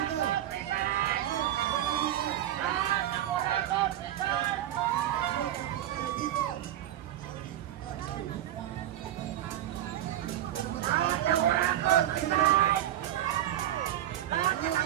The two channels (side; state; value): left; quieter; 12.6 dB